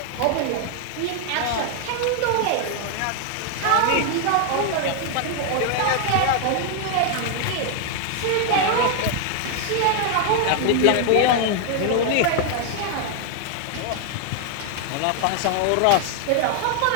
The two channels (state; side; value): different; both; correlation 0.00